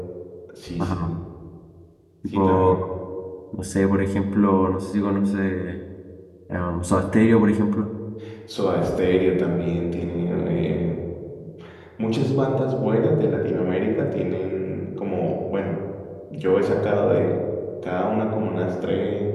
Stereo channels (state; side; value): identical; both; correlation 1.00